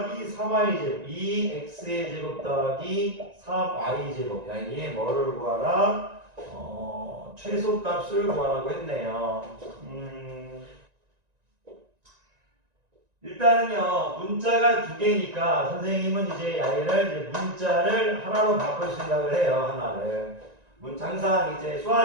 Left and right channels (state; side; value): late; left; 1.9 ms